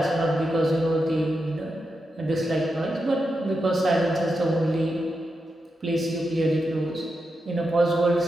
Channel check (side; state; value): both; normal; correlation 0.87